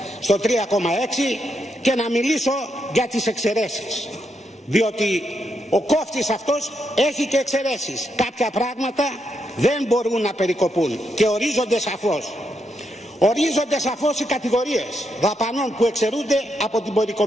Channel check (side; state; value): both; normal; correlation 0.81